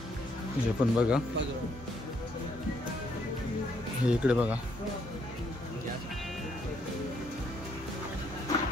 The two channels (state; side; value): normal; both; correlation 0.71